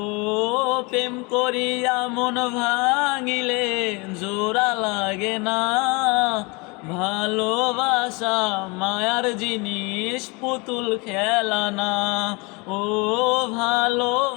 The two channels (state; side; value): quieter; right; 28.2 dB